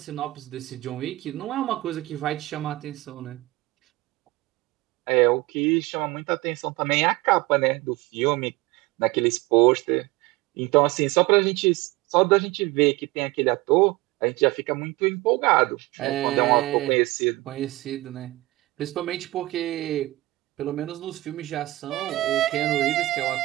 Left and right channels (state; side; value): quieter; left; 19.7 dB